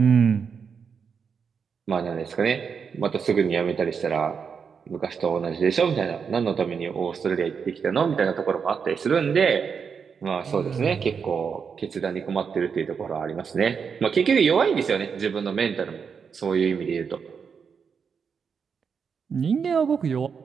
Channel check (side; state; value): left; quieter; 6.3 dB